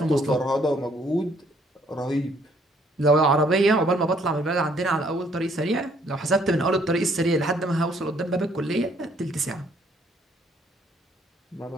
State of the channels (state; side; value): normal; both; correlation 0.65